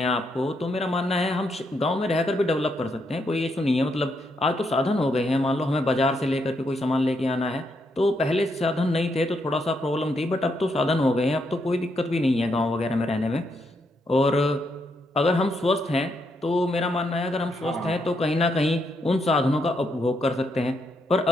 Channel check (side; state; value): both; normal; correlation 0.78